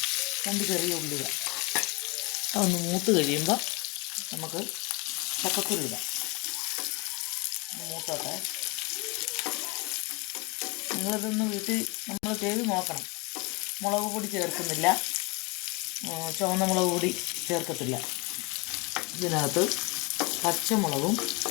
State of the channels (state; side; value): quieter; right; 28.1 dB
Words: 2 ചെറിയ ഉള്ളിക. അതൊന്ന് മൂത്ത് കഴിയുമ്പോൾ നമുക്ക് ചക്കക്കുരു ഇടാം. മൂത്തോട്ടെ. നിങ്ങളിതൊന്ന് വീട്ടിൽ നമ്മൾ ചെയ്ത് നോക്കണം. മുളക് പൊടി ചേർക്കുന്നില്ല, ചുവന്ന മുളക് പൊടി ചേർക്കത്തില്ല. ഇതിനകത്ത് പച്ചമുളകും